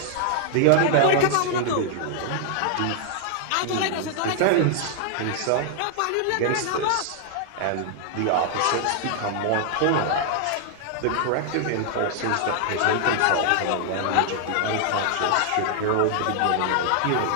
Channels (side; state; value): both; different; correlation -0.01